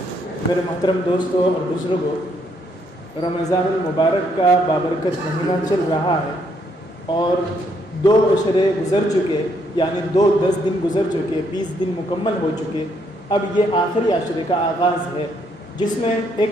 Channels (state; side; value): normal; both; correlation 0.72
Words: میرے محترم دوستوں اور بزرگوں، رمضان المبارک کا بابرکت مہینہ چل رہا ہے اور 2 عشرے گزر چکے، یعنی 10 دن گزر چکے، 20 دن مکمل ہو چکے۔ اب یہ آخری عشرے کا آغاز ہے جس میں